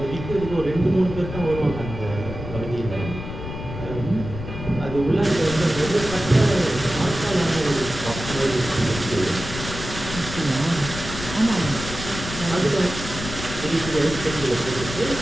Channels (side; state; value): left; noise; rumble, 9 dB below the sound